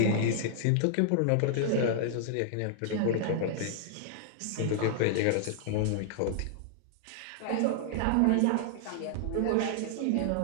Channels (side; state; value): both; different; correlation -0.01